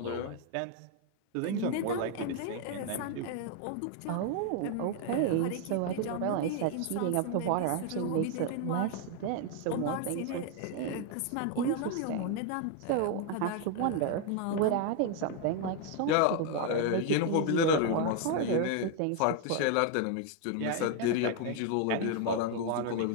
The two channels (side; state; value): both; different; correlation 0.00